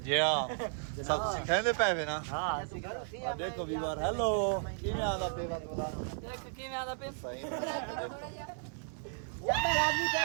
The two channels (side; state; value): left; silent; 55 dB below the other